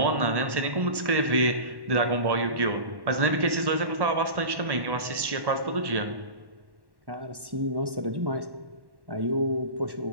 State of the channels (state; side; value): late; left; 1.1 ms